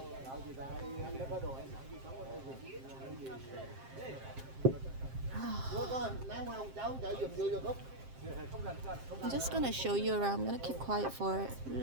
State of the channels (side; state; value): left; late; 7.6 ms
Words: I'm just gonna show you around. I'm gonna keep quiet for a